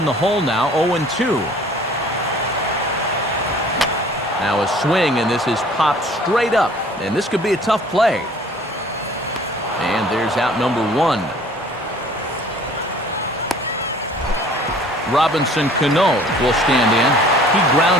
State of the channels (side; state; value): both; normal; correlation 0.51